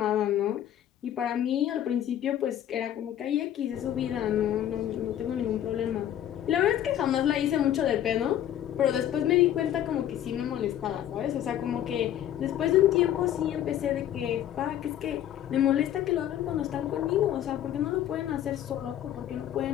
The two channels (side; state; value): right; quieter; 11.2 dB